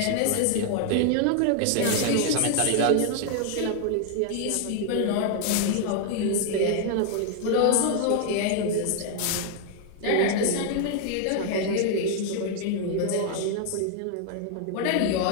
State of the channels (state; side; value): different; both; correlation 0.00